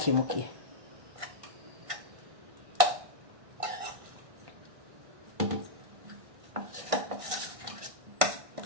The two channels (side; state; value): left; late; 1.6 ms